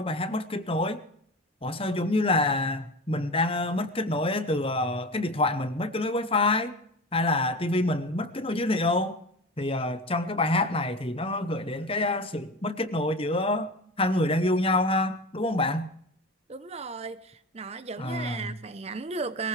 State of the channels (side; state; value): both; normal; correlation 0.29